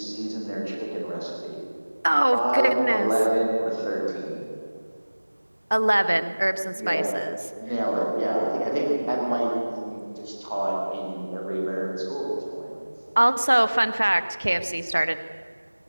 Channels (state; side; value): inverted; both; correlation -1.00